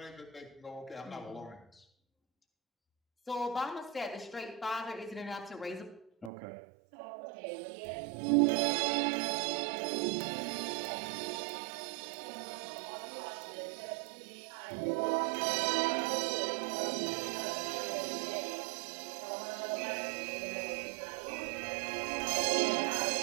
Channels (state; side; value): drops out; left; at 6.3 s